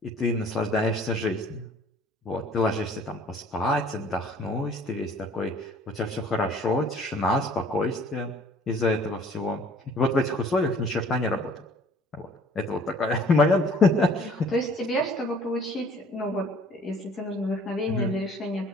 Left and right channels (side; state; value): both; normal; correlation 0.53